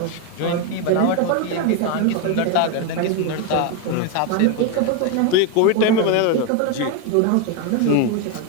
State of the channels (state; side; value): different; both; correlation 0.02